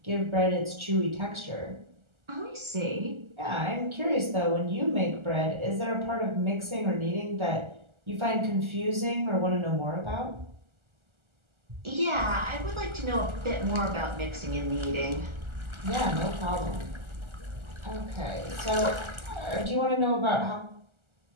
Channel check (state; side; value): late; left; 1.4 ms